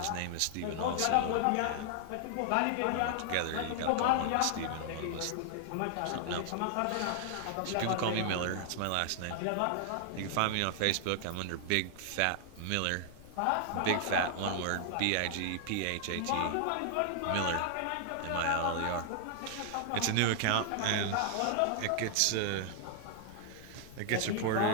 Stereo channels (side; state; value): both; different; correlation 0.00